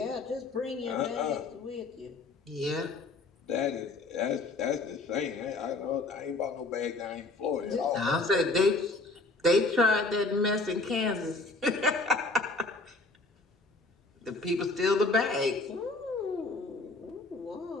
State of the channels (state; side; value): quieter; right; 3.3 dB